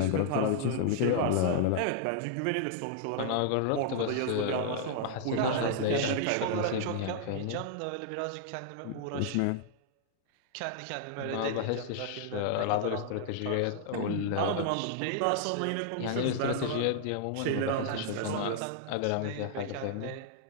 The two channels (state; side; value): different; both; correlation -0.01